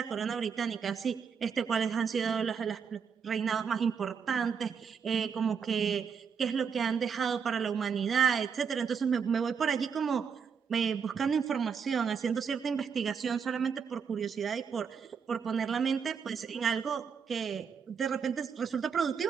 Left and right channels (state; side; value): quieter; left; 6.6 dB